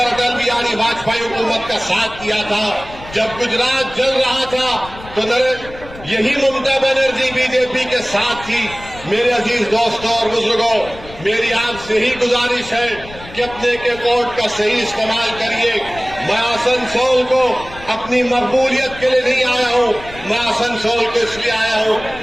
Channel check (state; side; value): noise; left; rumble, 17 dB below the sound